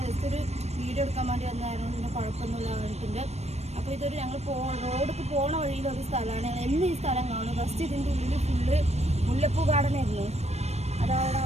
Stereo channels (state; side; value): late; left; 0.31 ms